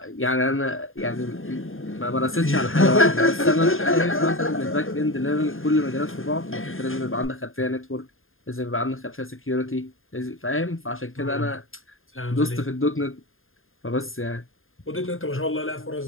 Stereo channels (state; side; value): late; right; 0.60 ms